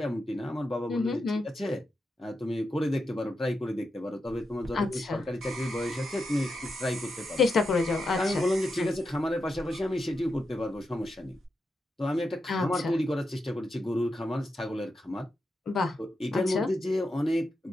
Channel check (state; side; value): normal; both; correlation 0.87